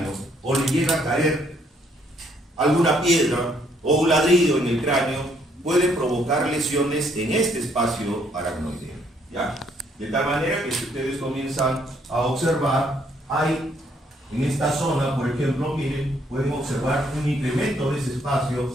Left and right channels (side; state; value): both; normal; correlation 0.68